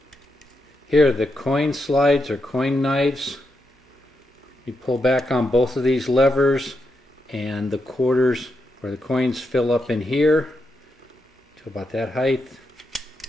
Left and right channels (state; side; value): normal; both; correlation 0.84